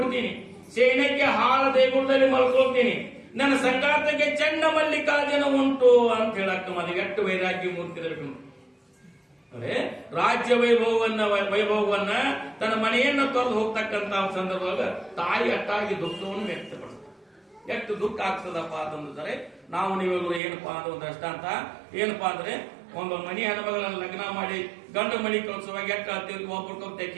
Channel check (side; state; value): left; drops out; at 20.4 s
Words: ಸೇನಕ್ಕೆ ಹಾಳ ದೇಗುಲದಲ್ಲಿ ಮಲ್ಕೊಳ್ತೀನಿ, ನನ್ನ ಸಂಗಾತಕ್ಕೆ ಚನ್ನಮಲ್ಲಿಕಾರ್ಜುನ ಉಂಟು ಅಂತ ಹೇಳ ಅಕ್ಕ ಮಾದೇವಿ. ಎಷ್ಟು ವೈರಾಗ್ಯ ಮೂರ್ತಿಗಳು ಅಂದ್ರೆ ರಾಜ್ಯ ವೈಭವವನ್ನ ತನ್ನ ಮನೆಯನ್ನ ತೊರೆದು ಹೋಗ್ತಕ್ಕಂತ ಸಂದರ್ಭದಾಗ ತಾಯಿ ಅಟ್ಟಾಗಿ ದುಃಖವನ್ನು ವ್ಯಕ್ತಪಡಿಸ್ತಾರೆ. ಎಷ್ಟು ದುಃಖ ಆಗ್ತದಪ್ಪ ಅಂತಂದ್ರೆ ನಾವು ನೀವೆಲ್ಲರೂ ಏನಪ್ಪಾ ಅಂತ ಒಂದು ದೃಷ್ಟಾಂತ ಏನಪ್ಪಾ ಅಂದ್ರೆ ಒಂದು ಮನಿ ಹೆಣ್ಮಗಳನ್ನ ಲಗ್ನ ಮಾಡಿ ಗಂಡು ಮನಿ ಕಳ್ಸುವಾಗ ಎಷ್ಟು ಆಗ್ತೀವಿ, ಒಬ್ರಿಗೊಬ್ಬರು